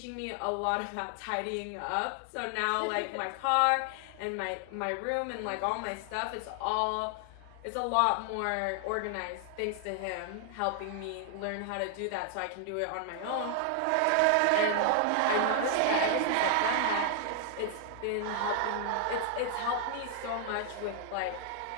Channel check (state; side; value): different; both; correlation 0.00